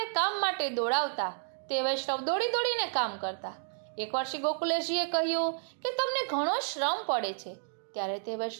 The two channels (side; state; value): left; silent; 57 dB below the other